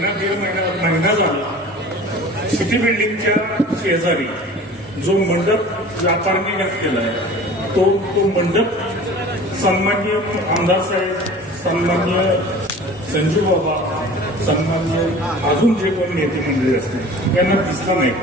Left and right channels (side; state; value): both; normal; correlation 0.42